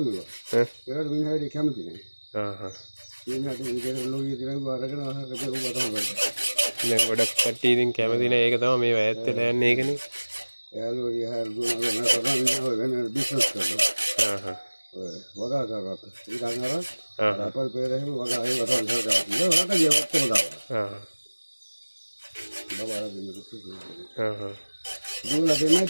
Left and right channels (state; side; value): inverted; both; correlation -1.00